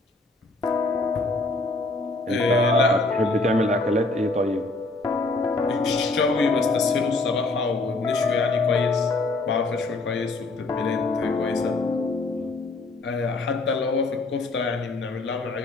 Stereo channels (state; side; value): quieter; right; 3.2 dB